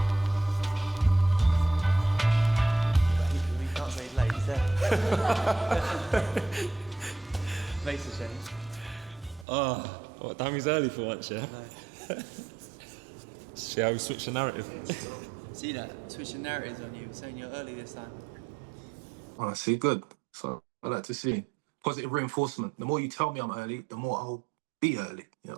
We can't say late, is there? Makes a change. What, Dammy's early for once, yeah? No. See how we switch the narrative. See that? Switching narratives on you, saying you're early this time. Oh, see, good. So I like to see positive reinforcement. The more you tell me I'm early, the more I'll be early. You know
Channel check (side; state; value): left; drops out; at 9.5 s